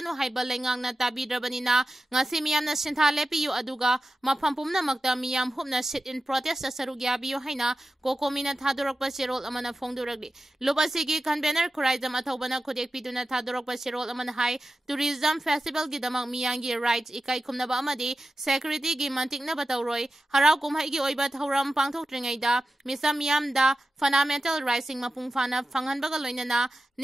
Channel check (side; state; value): both; normal; correlation 0.93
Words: haiba lengang na tabidrabanina ngasi miyamna sinthale piu aduga mafam pumna makta miyam hupna sit in protest da sarugya biu haina kokomina thadorakpa serol amana phongdoragli lobasigi convener khuraizam athobana khudek piduna thadorakpa serol amana hai tourism festival gi damang miyangi rights ikai khumnaba amadi security gi mantikna bataw Roy harau kumhai gi oiba thauram pangthokringaida misam yamda fundamental rising mapung phana phanghanbaga loinana